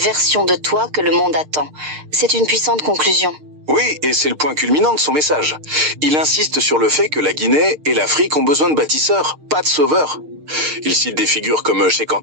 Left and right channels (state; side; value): late; left; 6.6 ms